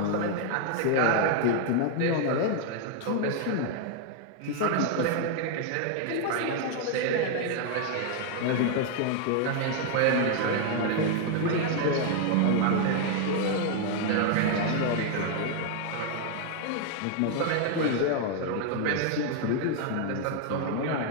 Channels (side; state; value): both; different; correlation 0.00